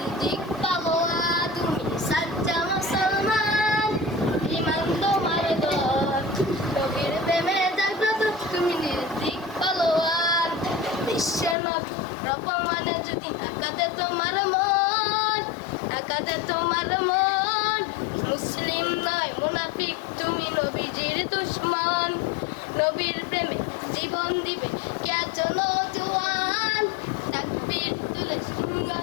পাগোয়া তুমি সচ্চা মুসলমান ইমান তোমার তর নবীর প্রেমে জাগ্রত তুমি নির্দিক পাগোয়ান বিশ্বের নবী রকমানে যদি আকাতে তোমার মন আকাতে তোমার মন মুসলিম নয় মুনাফিক তুমি নবীজির দুশ্মন নবীর প্রেমে জীবন দিবে কেতন জওয়ান তাকবীর তুলে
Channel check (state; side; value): drops out; right; at 11.6 s